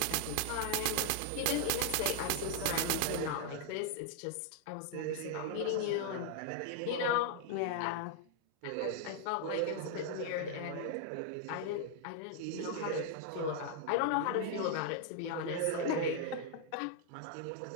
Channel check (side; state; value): both; different; correlation 0.00